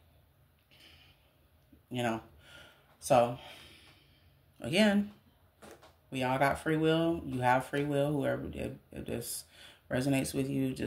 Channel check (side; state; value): both; identical; correlation 1.00